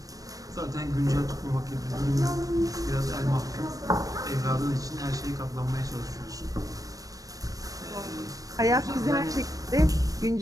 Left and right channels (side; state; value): left; late; 0.17 ms